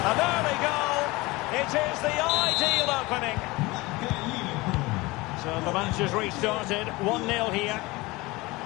An early goal. It is the ideal opening. So the match has restarted. 1-0 here.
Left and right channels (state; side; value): quieter; right; 22.1 dB